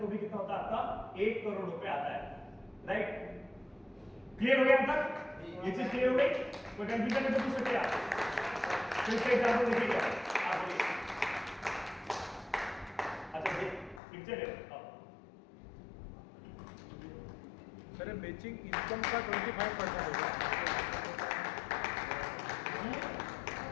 तो भी कितना होता है आपका 1 करोड़ रुपए आता है। राइट, क्लियर हो गया अब तक? ये चीज क्लियर हो गई? कोई कंफ्यूजन है तो पूछ सकते हैं आप। फिर से एग्जांपल देखिए आप बोलिए। अच्छा ये पिक्चर है अब सर मैचिंग इनकम का 25% होगा।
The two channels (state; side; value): drops out; right; at 14.0 s